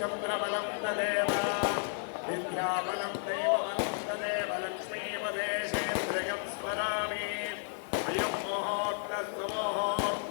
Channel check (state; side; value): silent; right; 56 dB below the other